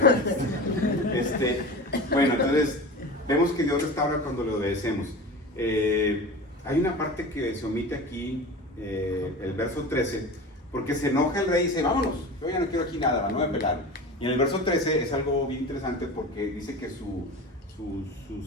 Bueno, entonces vemos que Dios restaura cuando le obedecemos. Hay una parte que se omite aquí, el verso 13, porque se enoja el rey y dice, vámonos, yo ya no quiero aquí nada, no voy a pelar. Y en el verso 13 es algo bien interesante porque dice que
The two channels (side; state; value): both; normal; correlation 0.32